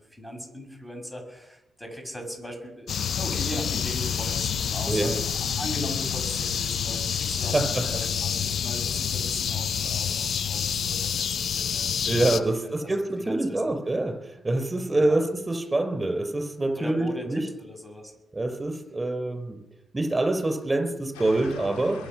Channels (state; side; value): normal; both; correlation 0.84